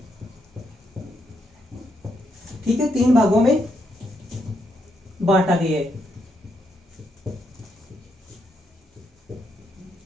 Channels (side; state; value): both; normal; correlation 0.78